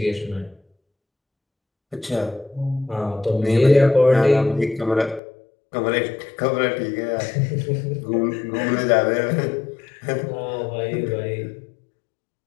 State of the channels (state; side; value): drops out; right; at 5.2 s